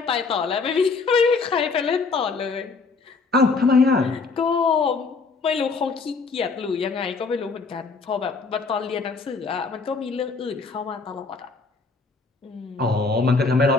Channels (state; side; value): quieter; right; 4.4 dB